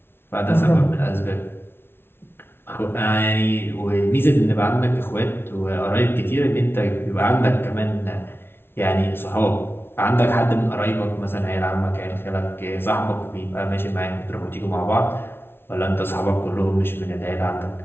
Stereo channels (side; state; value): right; late; 0.11 ms